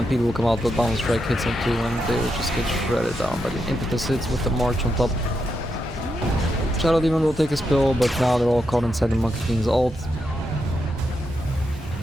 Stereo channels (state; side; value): normal; both; correlation 0.84